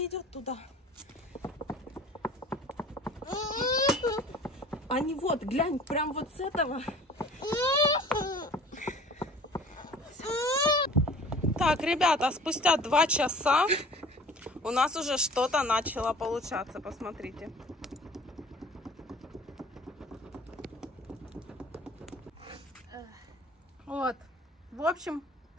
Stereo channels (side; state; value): both; normal; correlation 0.46